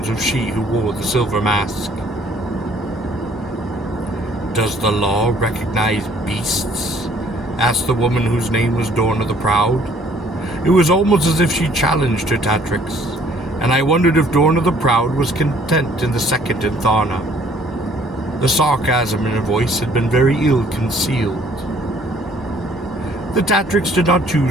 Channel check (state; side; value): normal; both; correlation 0.60